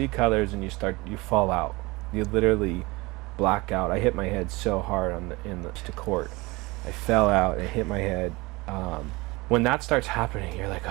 colors and you fall out. You literally black out. I hit my head so hard in the court. I fell out and hit my head. When that starts happening, you're like,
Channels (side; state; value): left; quieter; 23.2 dB